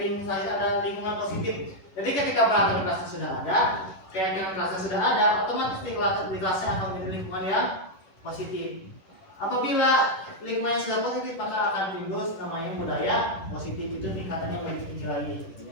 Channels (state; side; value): late; right; 10 ms